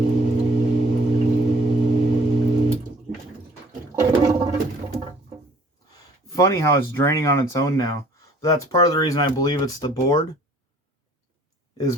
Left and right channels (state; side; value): normal; both; correlation 0.55